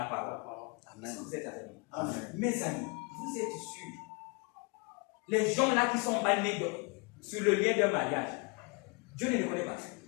parole. Amen. Est-ce que vous êtes avec moi? Amen. Mes amis, vous êtes sûrs, les gens là qui sont bannis sur le lien d'un mariage, Dieu ne les connaît pas.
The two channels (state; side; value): quieter; right; 31.6 dB